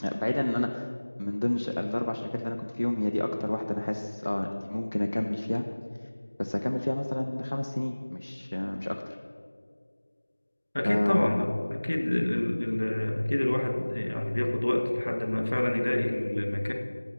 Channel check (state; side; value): inverted; both; correlation -1.00